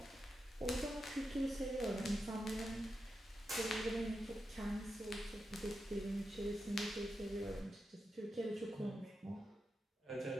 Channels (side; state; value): both; normal; correlation 0.88